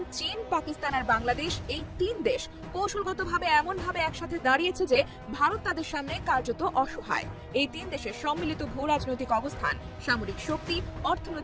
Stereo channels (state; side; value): identical; both; correlation 1.00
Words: চীন, পাকিস্তান আর বাংলাদেশ, এই 3 দেশ কৌশলগতভাবে এমনভাবে একসাথে দাঁড়িয়েছে যে ভারত তাদের সামনে কার্যত অসহায়। এই 3 দেশের সম্মিলিত ভূ রাজনৈতিক অবস্থান, সামরিক শক্তি,